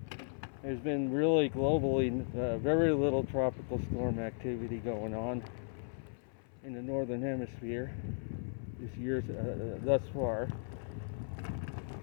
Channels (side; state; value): right; silent; 54 dB below the other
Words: There's been really globally very little tropical storm activity going on in the northern hemisphere this year thus far.